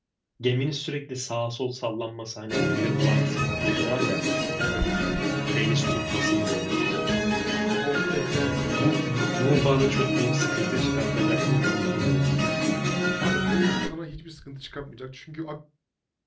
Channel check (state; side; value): identical; both; correlation 1.00